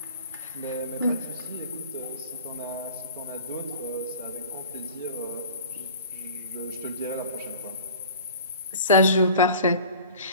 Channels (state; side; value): inverted; both; correlation -0.43